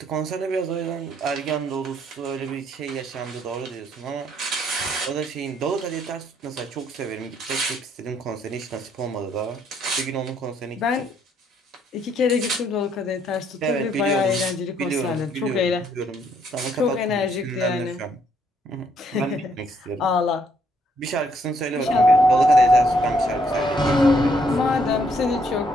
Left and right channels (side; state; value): both; normal; correlation 0.69